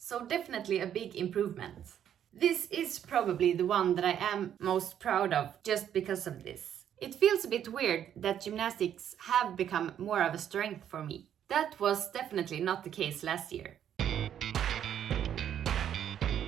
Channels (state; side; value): quieter; left; 9.8 dB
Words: definitely a big improvement. This is probably the one that I am most proud of just because of this. It feels a bit weird that gymnastics have become more of a strength for me. That was definitely not the case last year.